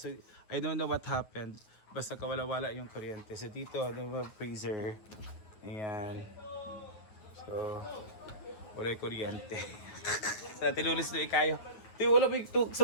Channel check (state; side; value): late; right; 9.5 ms